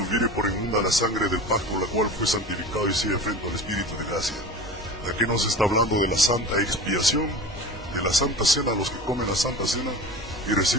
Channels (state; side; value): normal; both; correlation 0.34